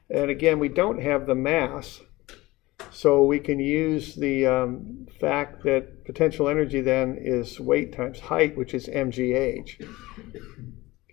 And again, we don't have the mass, so we can use the fact that potential energy then is weight times height, which is mgh.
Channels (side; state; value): right; quieter; 19.8 dB